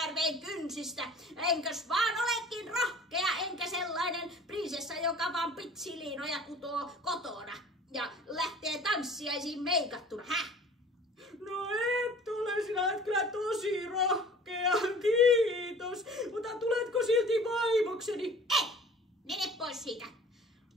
kynsistä. Enkös vaan olekin rohkea, enkä sellainen prinsessa, joka vaan pitsiliinoja kutoo kotona ja lähtee tanssiaisiin meikattuna. No et ole, sinä et kyllä tosi rohkea, kiitos. Mutta tuletko silti vaimokseni? Ei, mene pois siitä.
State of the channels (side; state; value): both; normal; correlation 0.46